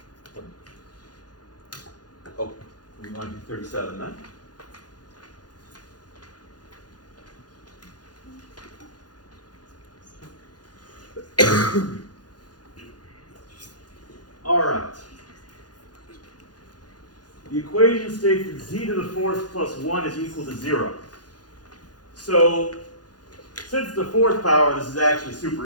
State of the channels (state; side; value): late; right; 0.69 ms